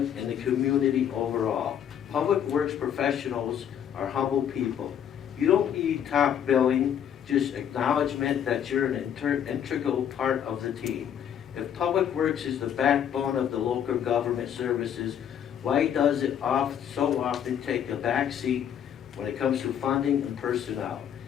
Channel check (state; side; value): quieter; right; 9.2 dB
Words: and the community overall. Public works professionals are humble people. You don't need top billing, just acknowledgement that you're an integral part of the team. If Public Works is the backbone of the local government services, why does it so often take a back seat when it comes to funding and personnel?